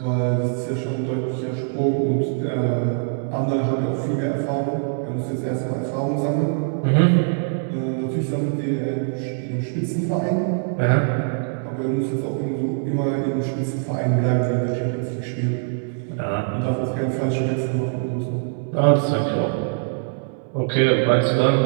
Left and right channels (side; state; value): left; silent; 64 dB below the other